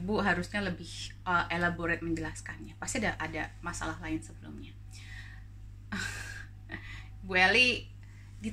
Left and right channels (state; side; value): identical; both; correlation 1.00